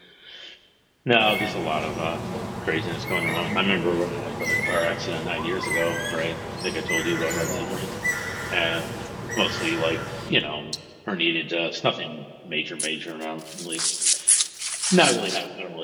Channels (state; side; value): identical; both; correlation 1.00